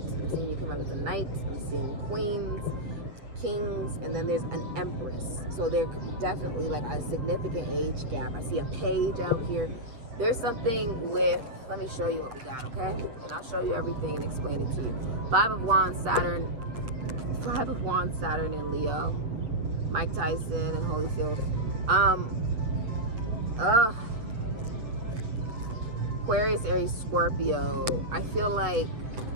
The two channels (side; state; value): left; late; 8.7 ms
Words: I'm seeing you come out as a knight. I'm seeing queens. kings, and then there's an empress. So there could be definitely like a significant age gap. I see a page out here. There's something with, let me show you what we got, okay? And I'll show you everything and explain it to you. 5 of Wands, Saturn in Leo. Mike Tyson and Holyfield. Aquarius, Aries, Scorpio. I feel like